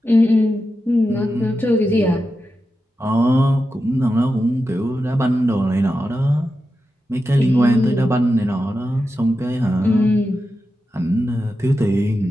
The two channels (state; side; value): normal; both; correlation 0.90